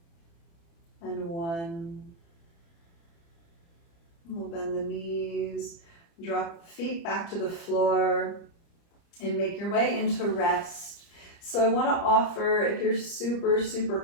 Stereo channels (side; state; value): right; late; 30 ms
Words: And 1. We'll bend the knees, drop the feet back to the floor, and make your way into rest. So I want to offer, if you're